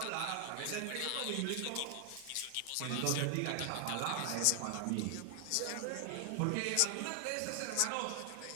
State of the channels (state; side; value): different; both; correlation 0.00